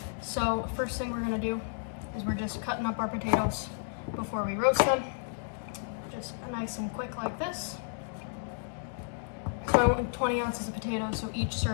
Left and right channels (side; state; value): right; silent; digital silence